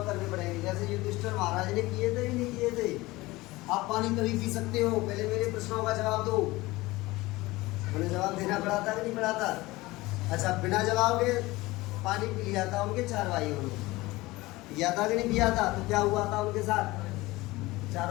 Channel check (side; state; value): right; quieter; 20.3 dB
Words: करने पड़ेंगे, जैसे युधिष्ठिर महाराज ने किए थे कि नहीं किए थे। आप पानी तभी पी सकते हो, पहले मेरे प्रश्नों का जवाब दो। उन्हें जवाब देना पड़ा था कि नहीं पड़ा था? अच्छा, बिना जवाब के पानी पी लिया था उनके 4 भाइयों ने, पिया था कि नहीं पिया था? तो क्या हुआ था उनके साथ?